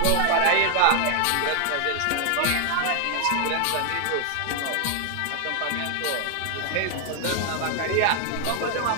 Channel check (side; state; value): both; different; correlation 0.00